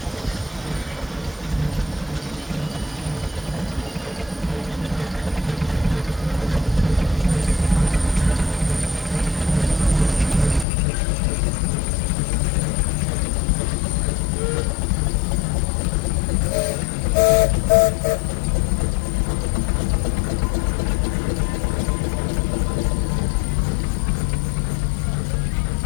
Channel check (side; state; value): right; drops out; at 10.7 s